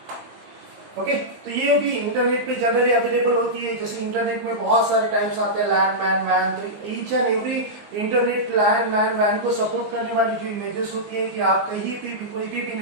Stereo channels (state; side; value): late; left; 19 ms